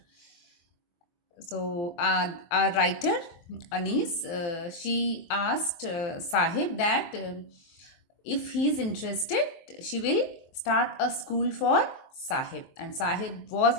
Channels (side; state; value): right; late; 23 ms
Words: So our writer Anees, she asked Sahib that if he is interested, she will start a school for Sahib, and Sahib was